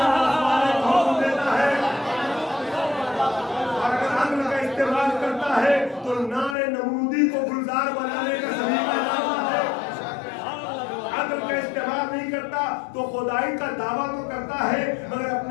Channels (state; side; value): drops out; right; at 6.6 s